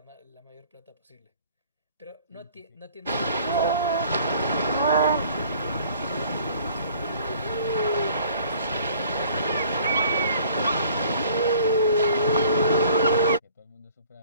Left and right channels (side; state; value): both; inverted; correlation -0.54